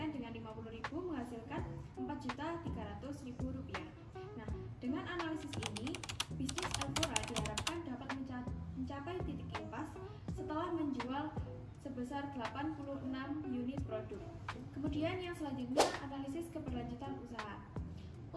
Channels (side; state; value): both; identical; correlation 1.00